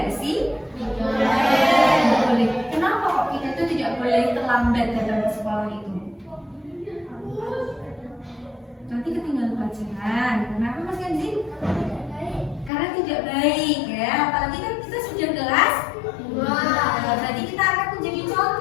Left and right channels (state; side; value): drops out; right; at 12.7 s